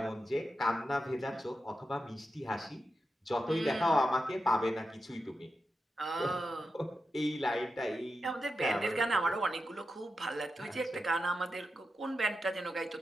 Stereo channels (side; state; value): both; normal; correlation 0.89